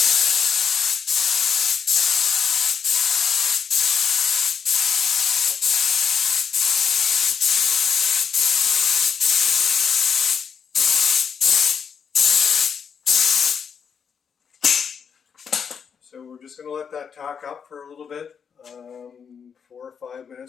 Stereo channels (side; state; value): right; quieter; 6.8 dB